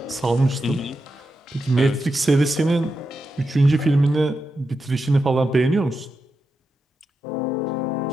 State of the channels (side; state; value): both; normal; correlation 0.87